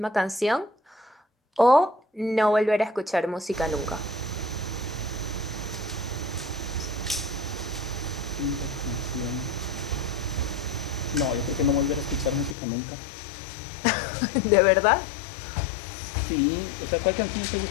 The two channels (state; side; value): drops out; right; at 12.6 s